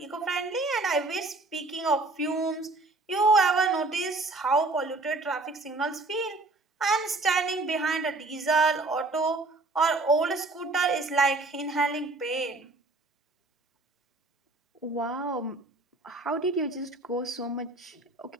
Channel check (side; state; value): left; quieter; 3.2 dB